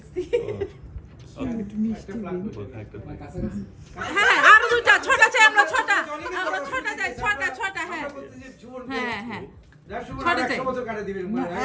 হ্যাঁ আর দুইটা ছটা চাই, আমরা ছটা চাই, ছটা হ্যাঁ হ্যাঁ হ্যাঁ ছটা চাই।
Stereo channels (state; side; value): identical; both; correlation 1.00